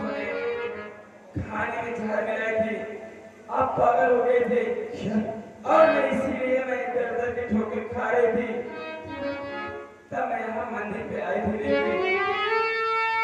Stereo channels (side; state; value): both; identical; correlation 1.00